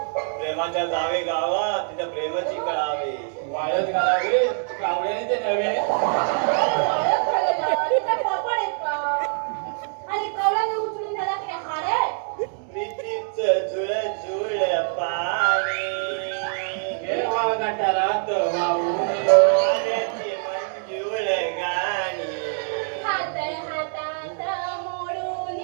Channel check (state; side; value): silent; left; 61 dB below the other